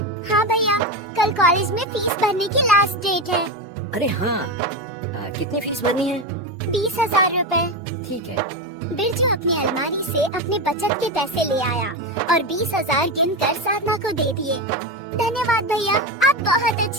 हाँ भैया, कल कॉलेज में फीस भरने की लास्ट डेट है। अरे हाँ, कितनी फीस भरनी है? 20,000 रुपए। ठीक है। बिरजू अपनी अलमारी से अपने बचत के पैसे ले आया और 20,000 गिनकर साधना को दे दिए। धन्यवाद भैया, आप बहुत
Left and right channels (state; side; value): normal; both; correlation 0.16